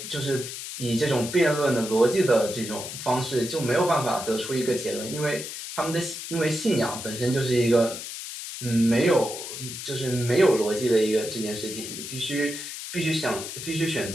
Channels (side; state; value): left; noise; hiss, 8 dB below the sound